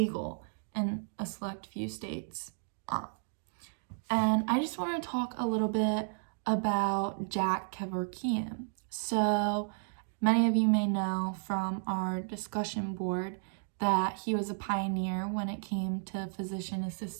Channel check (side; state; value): left; silent; digital silence